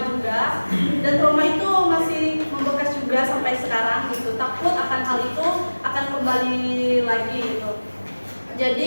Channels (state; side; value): inverted; both; correlation -1.00